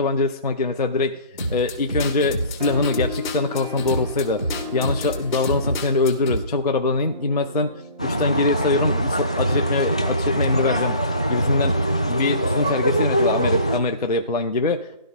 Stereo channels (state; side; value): inverted; both; correlation -0.45